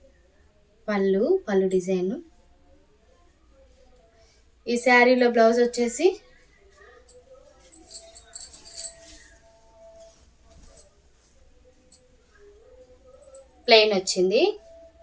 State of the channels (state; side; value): identical; both; correlation 1.00